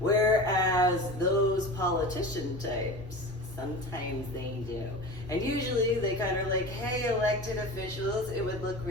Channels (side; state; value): both; normal; correlation 0.32